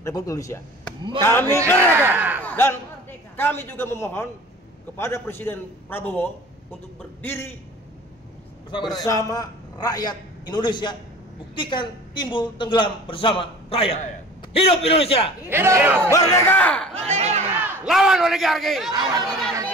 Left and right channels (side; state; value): both; normal; correlation 0.43